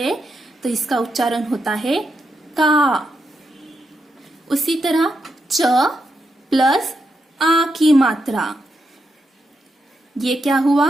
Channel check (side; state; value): both; normal; correlation 0.84